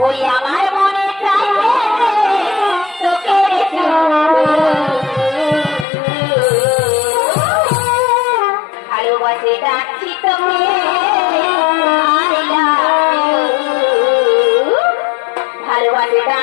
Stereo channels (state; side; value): drops out; right; at 5.9 s